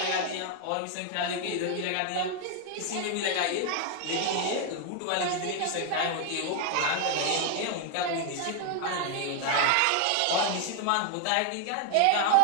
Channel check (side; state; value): both; different; correlation 0.01